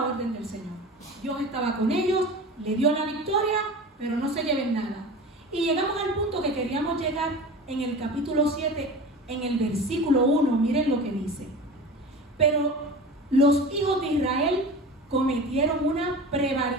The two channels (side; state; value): both; normal; correlation 0.34